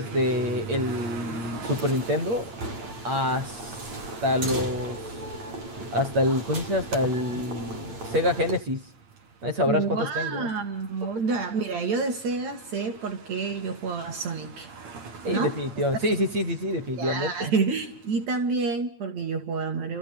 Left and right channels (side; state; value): left; late; 8.7 ms